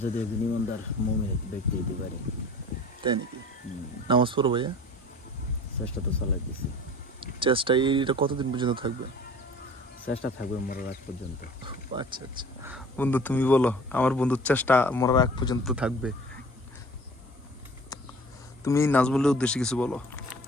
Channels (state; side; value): normal; both; correlation 0.45